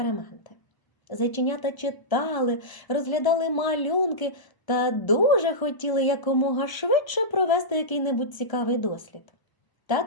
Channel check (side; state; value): right; late; 1.0 ms